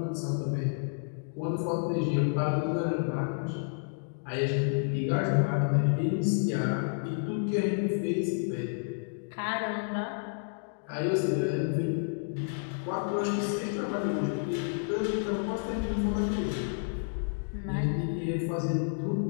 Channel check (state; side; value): silent; right; digital silence